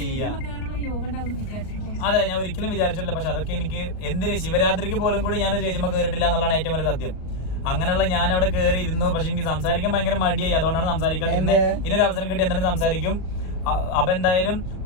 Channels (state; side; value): late; right; 38 ms